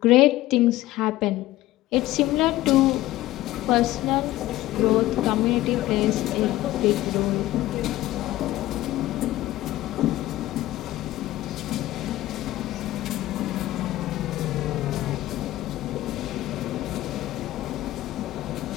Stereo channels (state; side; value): quieter; right; 16.2 dB